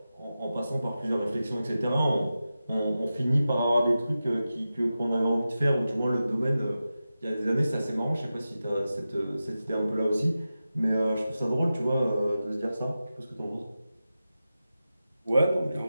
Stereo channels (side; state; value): both; inverted; correlation -0.93